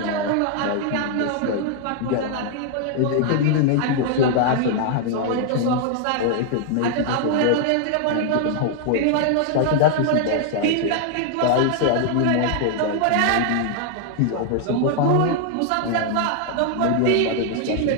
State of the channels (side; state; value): both; different; correlation 0.00